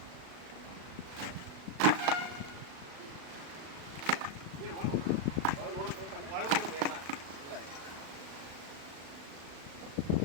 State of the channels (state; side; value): late; left; 36 ms